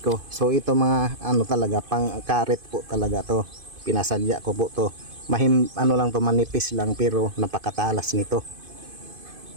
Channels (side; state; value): left; late; 2.5 ms